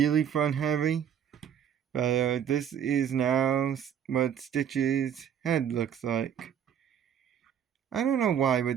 front heavy. But this is now what Stitch's head looks like. I don't know why, but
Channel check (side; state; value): left; quieter; 8.8 dB